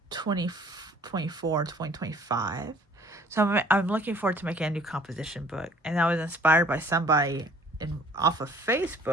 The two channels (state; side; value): normal; both; correlation 0.54